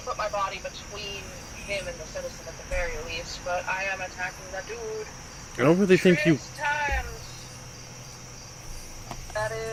to put my body between him and the citizen at the very least, but I am attacking the dude. I don't really think you... 6 times. That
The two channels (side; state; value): both; identical; correlation 1.00